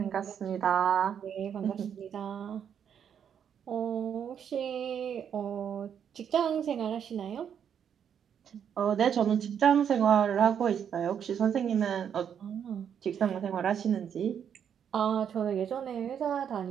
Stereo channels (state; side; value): quieter; left; 8.3 dB